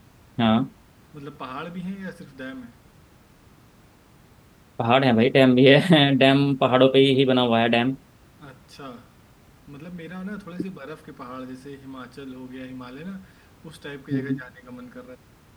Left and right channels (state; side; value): identical; both; correlation 1.00